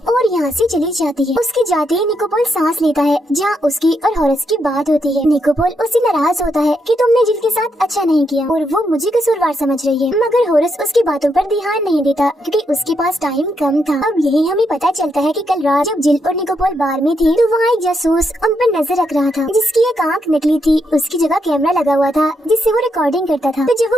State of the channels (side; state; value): both; normal; correlation 0.80